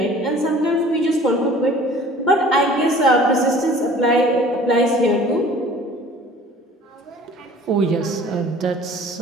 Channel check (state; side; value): normal; both; correlation 0.48